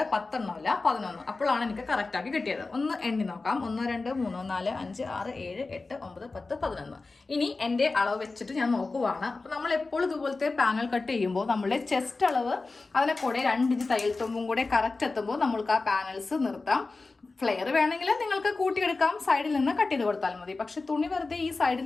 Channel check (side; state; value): right; quieter; 3.7 dB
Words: 10 എണ്ണമല്ല 11. അപ്പോഴാണ് എനിക്ക് കറക്റ്റ് ആക്കി കിട്ടിയത്. ഒന്ന് എണ്ണി നോക്കാം. 1 2 3 4 5 6 7 8 9 10 11. ഇനി എൻ്റെ അളവ് വെച്ചിട്ട് ഞാൻ നോക്കുവാണ്. അപ്പോൾ നമ്മൾ എപ്പോഴും ഇതുപോലത്തെ പാനൽ കട്ട് ചെയ്യുമ്പോൾ നമ്മളുടെ ചെസ്റ്റ് അളവ് അതിനെ കൂടെ 2 ഇഞ്ച് തയ്യൽ തുമ്പും കൂടെ കറക്റ്റ് എത്തുമ്പോൾ നമ്മൾക്ക് ആ പാനൽസ് നിർത്താം. ഫ്ലെയർ വേണമെങ്കിൽ നിങ്ങൾക്ക് കൂട്ടിയെടുക്കാം, സൈഡിൽ നിന്ന് കട്ട് ചെയ്ത് കൊടുത്താൽ മതി. പക്ഷെ തുണി വെറുതെ ഈ സൈഡിൽ